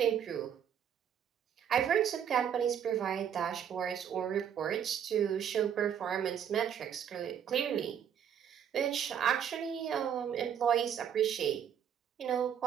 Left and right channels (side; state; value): left; quieter; 8.7 dB